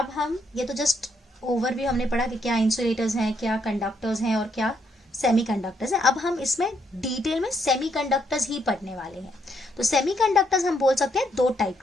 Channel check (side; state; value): both; normal; correlation 0.74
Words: हम ये तो जस्ट ओवरव्यू हमने पढ़ा कि क्या इंसुलेटर्स हैं, क्या कंडक्टर्स हैं और क्या सेमीकंडक्टर्स है। अब हम इसमें डिटेल में सेमीकंडक्टर्स ही पढ़ने वाले हैं। तो सेमीकंडक्टर्स हम बोल सकते हैं 2 टाइप